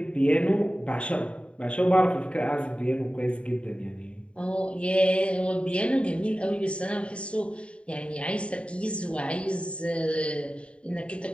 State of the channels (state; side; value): late; right; 0.059 ms